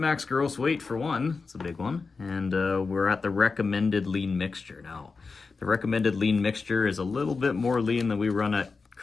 max gross weight for one. It's a big one. And we're at the recommended lean mixture. Now, the recommended lean mixture is a little bit more lean than we run at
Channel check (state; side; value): quieter; right; 4.5 dB